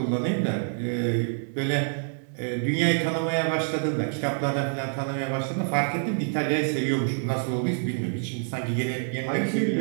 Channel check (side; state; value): left; silent; digital silence